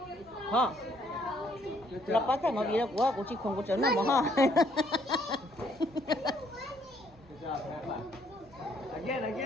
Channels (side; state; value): both; normal; correlation 0.66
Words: you so Hả? much. Là bắt thành mà vì là của chị không có chấn nào mà ha. Good job, have fun.